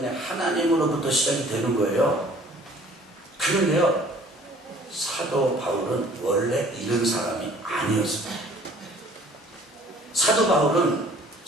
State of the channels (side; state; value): both; normal; correlation 0.53